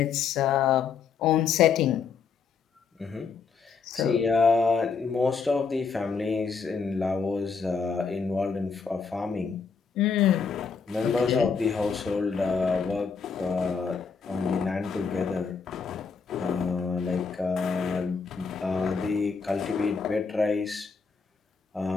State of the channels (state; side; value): quieter; right; 5.5 dB